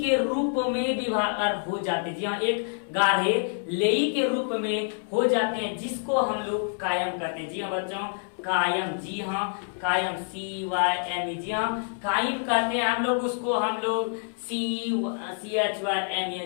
रूप में विभाग हो जाते हैं। जी हाँ, एक गाढ़े लेई के रूप में हो जाते हैं, जिसको हम लोग कायम कहते हैं। जी हाँ बच्चों, कायम, जी हाँ कायम, CYM, जी हाँ कायम कहते हैं हम लोग उसको, हम लोग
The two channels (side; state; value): right; silent; 60 dB below the other